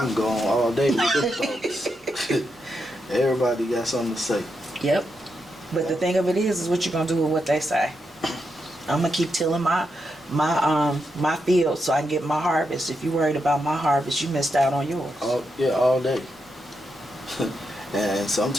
can go on all day with this thoughts. Everybody got something to say. Yep. But the thing of it is what you're gonna do with what they say. I'm gonna keep tilling my field so I can get my harvest. If you're worried about my harvest, you missed out on yours. All day. And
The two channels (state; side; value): normal; both; correlation 0.84